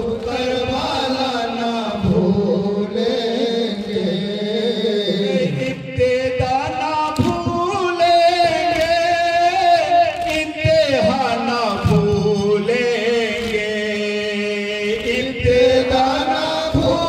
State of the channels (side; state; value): both; identical; correlation 1.00